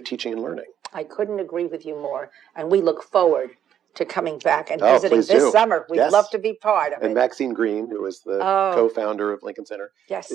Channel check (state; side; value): quieter; left; 9.7 dB